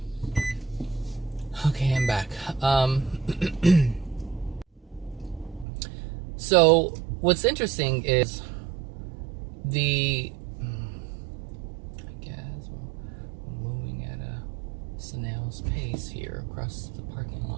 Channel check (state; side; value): drops out; left; at 5.7 s